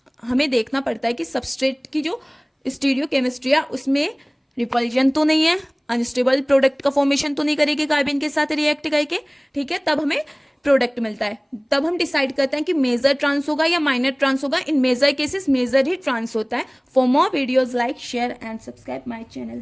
हमें देखना पड़ता है कि सबस्ट्रेट की जो स्टीरियो केमिस्ट्री है उसमें रिपल्जन तो नहीं है, अनस्टेबल प्रोडक्ट का फॉर्मेशन तो नहीं करेगी कार्बिन के साथ रिएक्ट करके, ठीक है, तब हमें प्रोडक्ट मिलता है। तब हम डिसाइड करते हैं कि मेजर ट्रांस होगा या माइनर ट्रांस होगा। इन मेजर केसेस मेजर ही ट्रांस होता है। For more videos like share and subscribe my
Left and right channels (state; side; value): identical; both; correlation 1.00